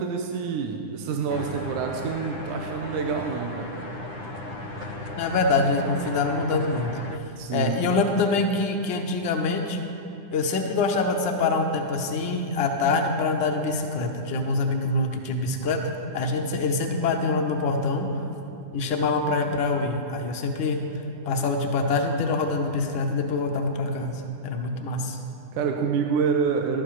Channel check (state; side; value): late; left; 9.9 ms